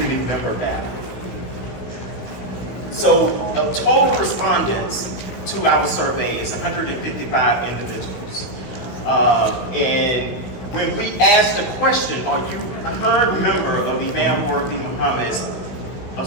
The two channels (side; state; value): right; late; 16 ms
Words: member data. So total respondents to our survey is 155 individuals. And when we asked the question, are you a current member of Imam Worthy Muhammad's